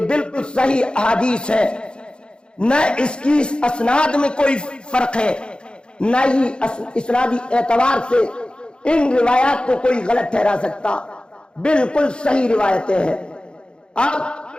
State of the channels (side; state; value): right; late; 0.052 ms